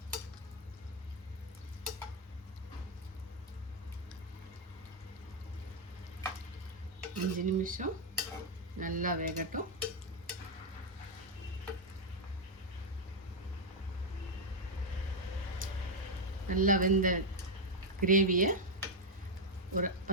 அஞ்சு நிமிஷம் நல்லா வேகட்டும். நல்லா வெந்த கிரேவியை ஒரு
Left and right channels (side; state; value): both; normal; correlation 0.01